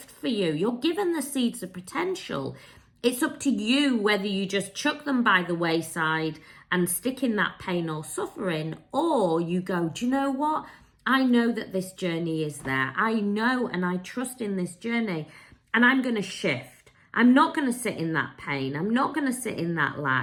for you. You're given the seeds of potential. It's up to you whether you just chuck them by the wayside and stick in that pain or suffering, or you go, do you know what? I know that this journey is there. I know and I trust in this journey, and I'm going to shift. I'm not going to sit in that pain. I'm not going to sit in that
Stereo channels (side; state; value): both; identical; correlation 1.00